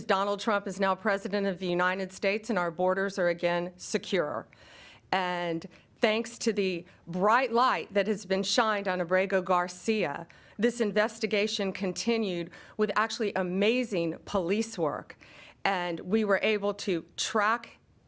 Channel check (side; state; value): both; identical; correlation 1.00